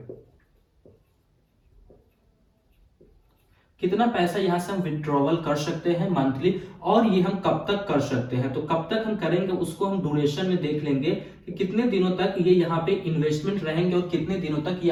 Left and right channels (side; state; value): both; identical; correlation 1.00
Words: कितना पैसा यहां से हम विड्रॉवल कर सकते हैं मंथली और ये हम कब तक कर सकते हैं। तो कब तक हम करेंगे उसको हम ड्यूरेशन में देख लेंगे कि कितने दिनों तक ये यहाँ पे इन्वेस्टमेंट रहेंगे और कितने दिनों तक ये